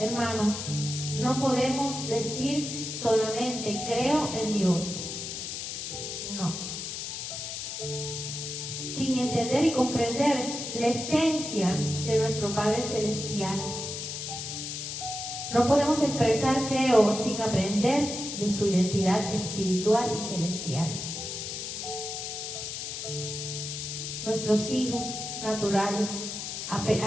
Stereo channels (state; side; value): noise; left; hiss, 6 dB below the sound